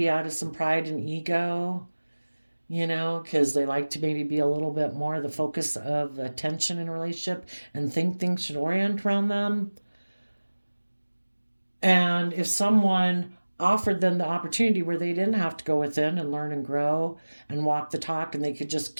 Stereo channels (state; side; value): inverted; both; correlation -1.00